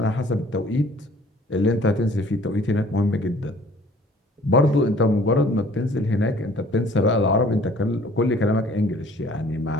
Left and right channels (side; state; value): both; normal; correlation 0.54